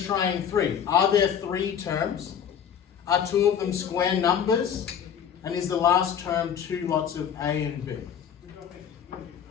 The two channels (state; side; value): quieter; right; 8.4 dB